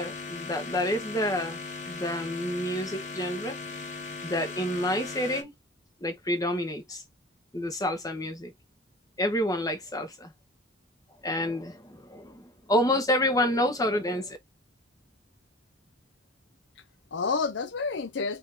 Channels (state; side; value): normal; both; correlation 0.37